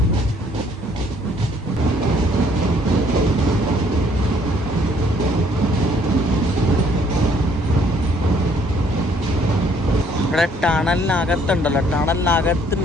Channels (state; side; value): normal; both; correlation 0.63